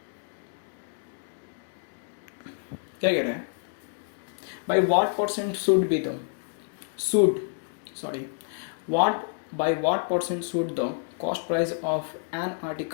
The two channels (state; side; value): silent; right; digital silence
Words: क्या कह रहा है, by what percent should be the should sorry what by what percent should the cost price of an